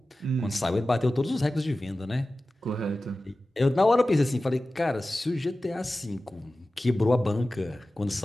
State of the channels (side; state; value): both; normal; correlation 0.95